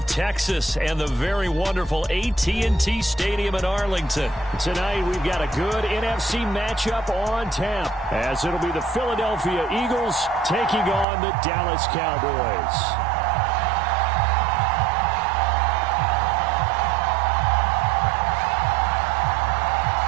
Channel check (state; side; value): drops out; left; at 11.1 s